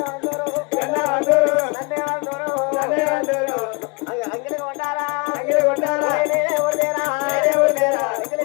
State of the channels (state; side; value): quieter; right; 30.3 dB